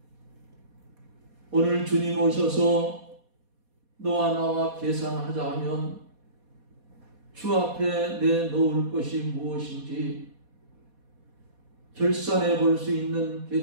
오늘 주님 오셔서 너와 나와 계산하자 하면 주 앞에 내놓을 것이 무엇인지 결산해 볼 수 있는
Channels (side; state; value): left; late; 4.2 ms